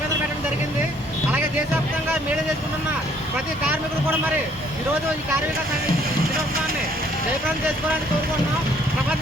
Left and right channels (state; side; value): normal; both; correlation 0.63